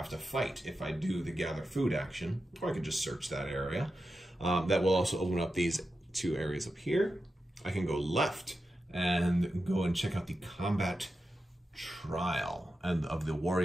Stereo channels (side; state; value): both; normal; correlation 0.90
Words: to fight if I do the gather food action, or I could just search that area. That will also open up these 2 areas up here. I can go left and go and check out the combat trial and of the